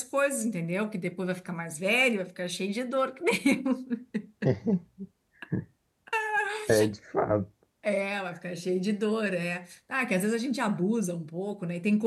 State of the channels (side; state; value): both; identical; correlation 1.00